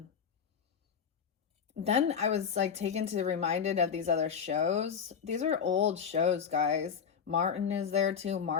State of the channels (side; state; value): right; quieter; 7.1 dB